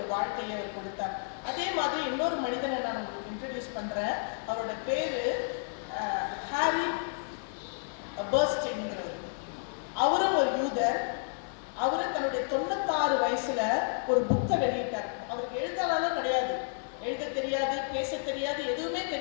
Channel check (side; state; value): right; silent; digital silence